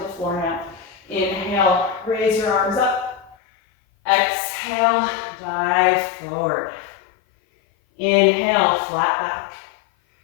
the floor now. Inhale, raise your arms up. Exhale, dive forward. Inhale, flat back.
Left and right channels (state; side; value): drops out; right; at 3.4 s